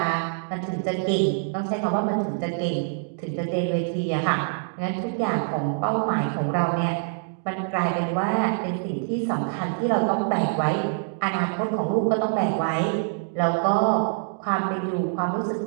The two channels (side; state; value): left; silent; digital silence